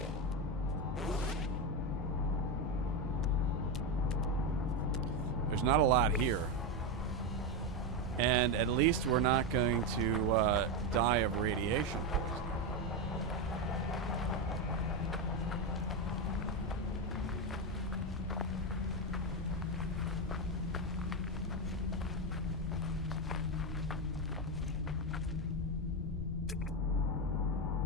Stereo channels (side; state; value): both; normal; correlation 0.10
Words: There's not a lot here. And at least we're not going to die of radiation poisoning.